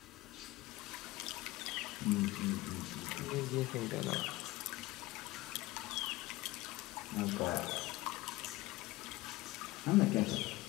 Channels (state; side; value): quieter; right; 19.0 dB